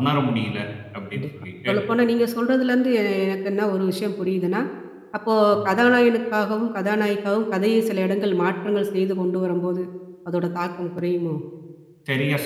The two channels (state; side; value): identical; both; correlation 1.00